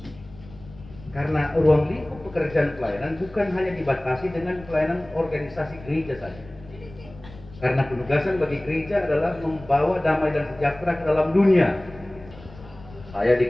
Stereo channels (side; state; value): left; noise; rumble, 19 dB below the sound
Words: Karena ruang lingkup pekerjaan pelayanan bukan hanya dibatasi dengan pelayanan organisasi gereja saja. Karena penugasan bagi gereja adalah membawa damai dan sejahtera ke dalam dunia. Saya